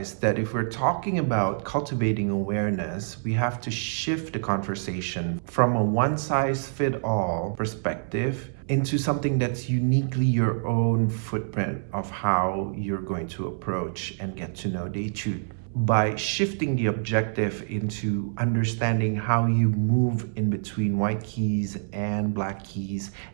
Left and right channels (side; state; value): left; silent; 61 dB below the other